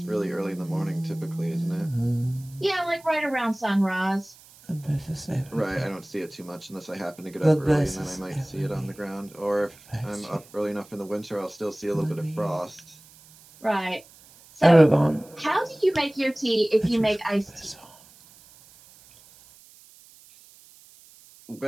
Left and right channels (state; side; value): noise; right; hiss, 24 dB below the sound